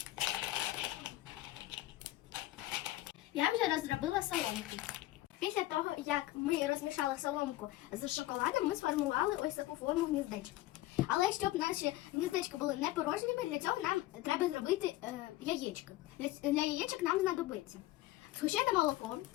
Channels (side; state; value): right; quieter; 16.8 dB